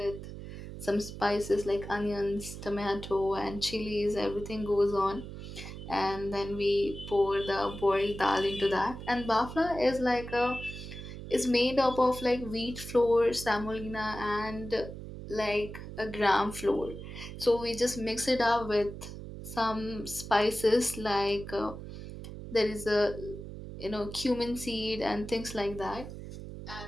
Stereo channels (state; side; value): noise; right; hum, 10 dB below the sound